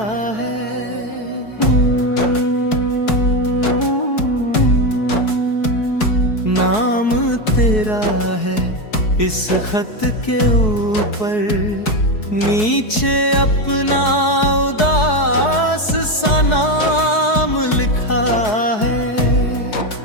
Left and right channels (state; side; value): late; right; 4.7 ms